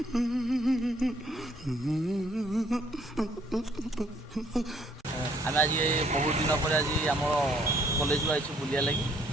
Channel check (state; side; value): normal; both; correlation 0.65